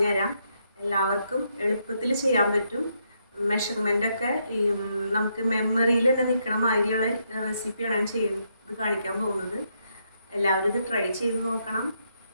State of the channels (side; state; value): both; inverted; correlation -0.78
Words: എല്ലാവർക്കും എളുപ്പത്തിൽ ചെയ്യാൻ പറ്റും. മെഷർമെൻ്റൊക്കെ നമുക്ക് മെമ്മറിയിൽ തന്നെ നിൽക്കണ മാതിരിയുള്ള റെസിപ്പിയാണ് ഞാൻ ചെയ്യുന്നത് കാണിക്കാൻ പോകുന്നത്. എല്ലാവരും ഇത് ട്രൈ ചെയ്ത് നോക്കണം.